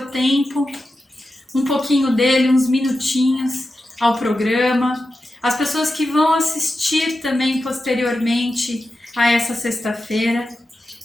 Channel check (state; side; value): normal; both; correlation 0.91